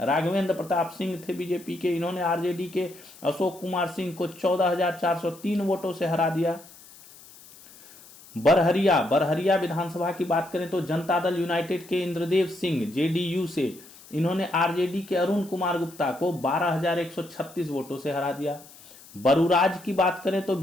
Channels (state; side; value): noise; left; hiss, 21 dB below the sound